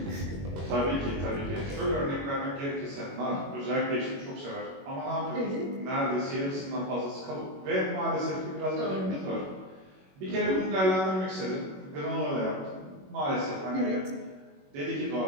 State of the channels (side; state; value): left; late; 21 ms